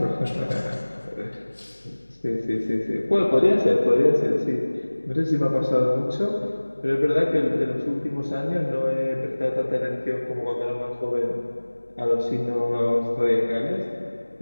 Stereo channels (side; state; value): both; inverted; correlation -1.00